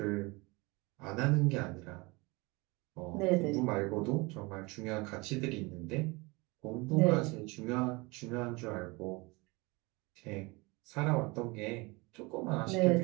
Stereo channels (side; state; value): left; quieter; 25.5 dB